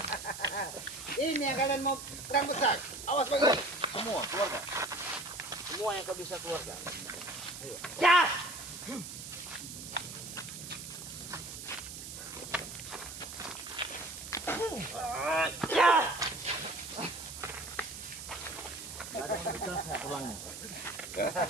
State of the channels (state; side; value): noise; right; hiss, 10 dB below the sound